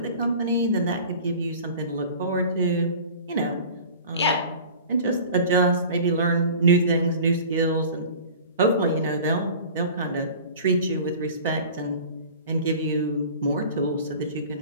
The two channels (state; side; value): inverted; both; correlation -0.41